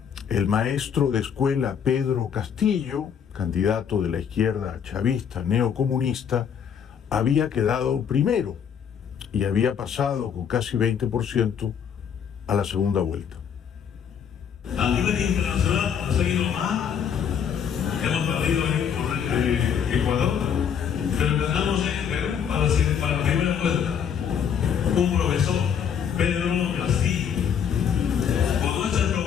el maestro de escuela Pedro Castillo, candidato de la izquierda chavista neocomunista, había quedado primero y había pasado con casi 20% a la segunda vuelta. A nivel internacional ha seguido mal, hemos perdido en Ecuador, pero ganamos en Perú para la primera vuelta. Un profesor, Pedro Castillo, con nuestra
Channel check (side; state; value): right; quieter; 7.8 dB